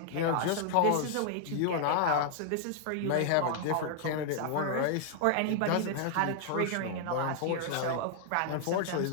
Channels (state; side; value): different; both; correlation 0.00